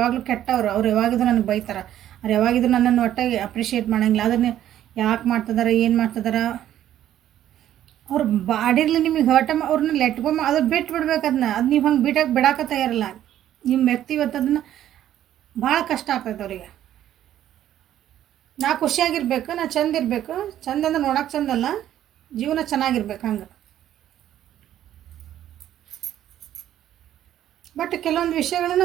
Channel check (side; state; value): left; quieter; 11.8 dB